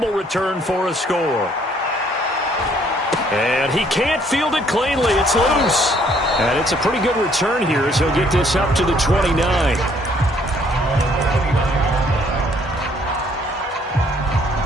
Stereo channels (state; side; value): normal; both; correlation 0.64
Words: return for a score. And he can't field it cleanly. It's loose. And it's a pretty good return here as he'll get this up to the 29.